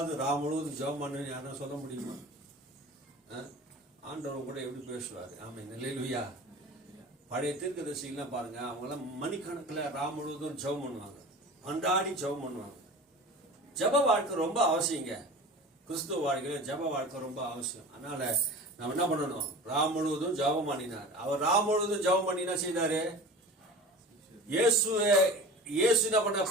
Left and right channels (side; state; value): both; normal; correlation 0.36